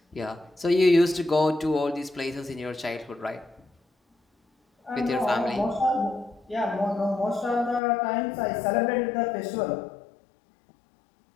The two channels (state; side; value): drops out; right; at 7.8 s